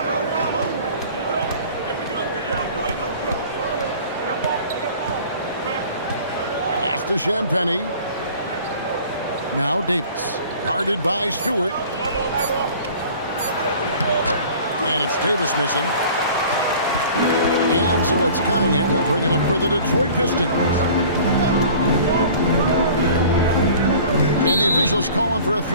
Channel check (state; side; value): inverted; both; correlation -0.46